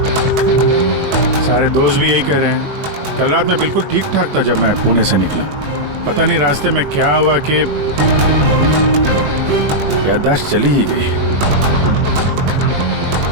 सारे दोस्त भी यही कह रहे हैं। कल रात मैं बिल्कुल ठीक ठाक था जब मैं पुणे से निकला। पता नहीं रास्ते में क्या हुआ कि याददाश्त चली ही गई।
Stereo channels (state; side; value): late; left; 21 ms